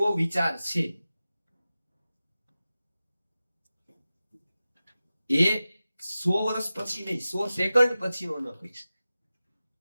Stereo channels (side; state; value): both; inverted; correlation -0.95